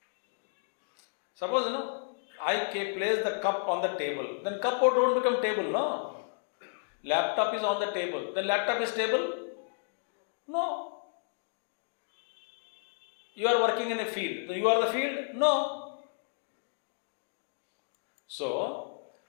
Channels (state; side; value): silent; right; digital silence